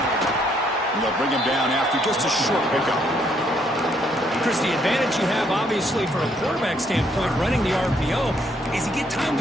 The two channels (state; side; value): normal; both; correlation 0.70